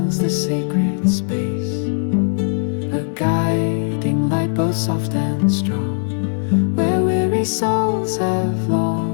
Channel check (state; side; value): silent; right; 64 dB below the other